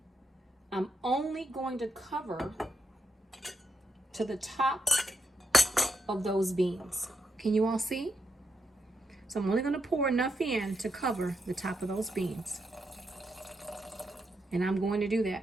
I'm only going to cover to the top of those beans. Can you all see? So I'm only going to pour enough in to cover the top of those beans. And I'm going to do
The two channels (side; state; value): both; normal; correlation 0.82